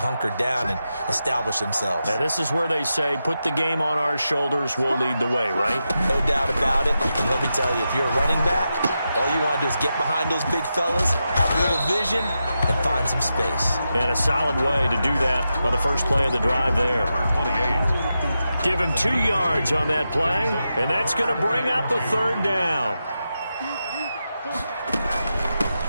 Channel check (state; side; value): inverted; both; correlation -0.89